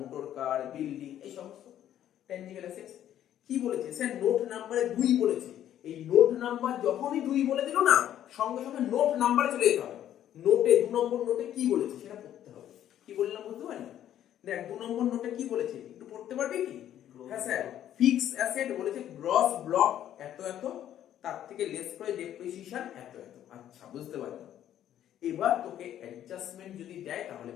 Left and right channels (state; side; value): quieter; right; 11.2 dB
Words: car, building, এই সমস্ত ট্যানজিবল অ্যাসেট। কি বলেছে স্যার? নোট নাম্বারে 2 বলেছে। এই নোট নাম্বার যখনই 2 বলে দিল না, সঙ্গে সঙ্গে নোট নাম্বারে চলে যেতে হবে। নোটে 2 নম্বর নোটে কি বলেছে সেটা পড়তে হবে। কি বললাম বুঝতে পারলি? দেখ 2 নম্বর নোটে কি বলেছে একটু পড়তে পারবি কি? হ্যাঁ স্যার, ফিক্স অ্যাসেট বলেছে গ্রস ব্লক এত এত, তার থেকে লেস করে ডেপ্রিসিয়েশন এত এত। আচ্ছা বুঝতে পারলাম। এবার তোকে অ্যাডজাস্টমেন্ট যদি দেয় তাহলে